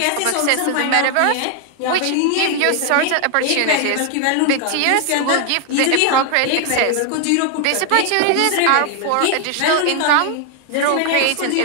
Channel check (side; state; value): both; different; correlation 0.00